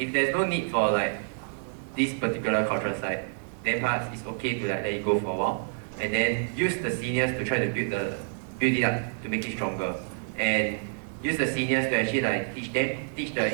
no need for like this particular cultural site, then perhaps it's okay to like let it go for a while, and then use the seniors to try to build it up to make it stronger, and use the seniors to actually like teach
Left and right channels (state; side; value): silent; left; 59 dB below the other